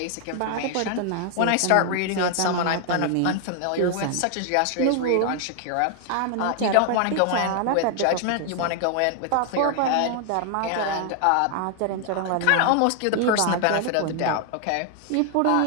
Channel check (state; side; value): different; both; correlation 0.00